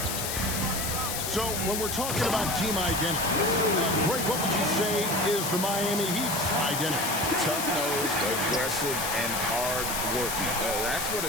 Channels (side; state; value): left; noise; hiss, 3 dB below the sound